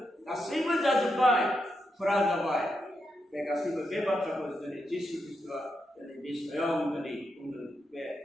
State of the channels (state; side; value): normal; both; correlation 0.84